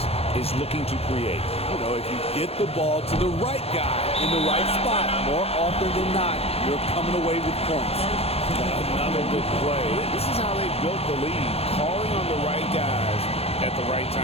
is looking to create. You know, if you get the ball to the right guy in the right spot, more often than not, you're coming away with points. Another good play. This is how they built the lead, calling on the right guys at the right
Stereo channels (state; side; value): late; right; 0.29 ms